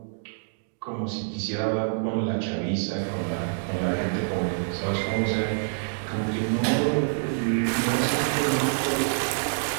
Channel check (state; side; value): silent; left; digital silence